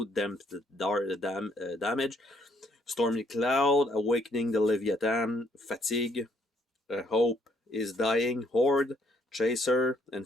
Damp the Damage, Stormy Cloud, Awakening the Leviathan, Fatigue, Hope is Dying, Horde, Chaser,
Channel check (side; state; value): both; normal; correlation 0.68